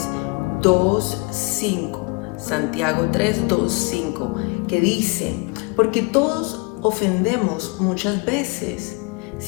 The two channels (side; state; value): right; quieter; 29.1 dB